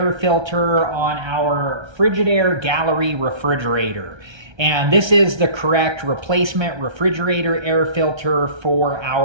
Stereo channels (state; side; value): late; left; 1.3 ms